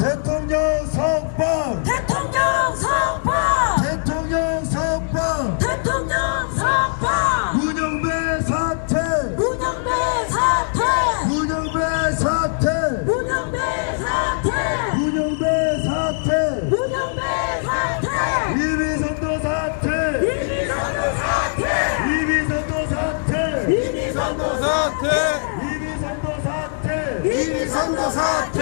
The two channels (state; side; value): silent; right; digital silence